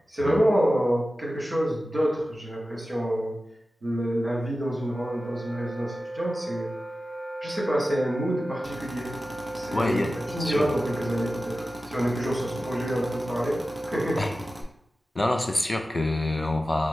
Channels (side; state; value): both; normal; correlation 0.94